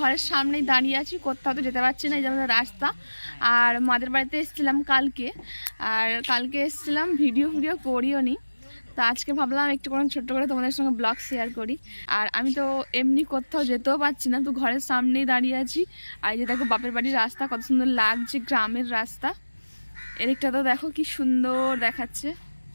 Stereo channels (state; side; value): inverted; both; correlation -1.00